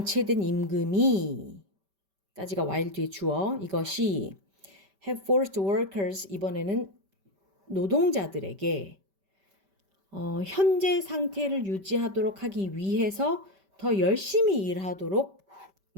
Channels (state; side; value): late; left; 5.1 ms